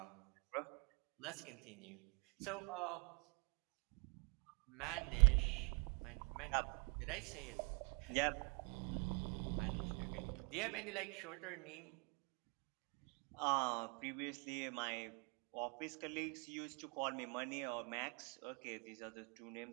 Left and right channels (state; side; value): quieter; left; 34.5 dB